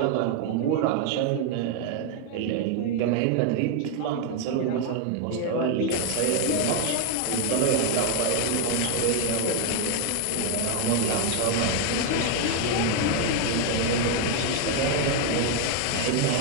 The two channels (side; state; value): both; different; correlation 0.01